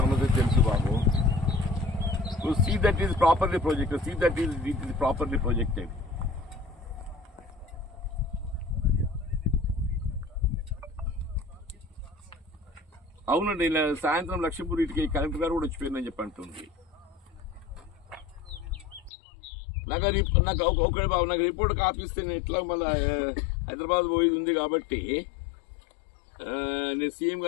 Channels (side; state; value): right; drops out; at 19.1 s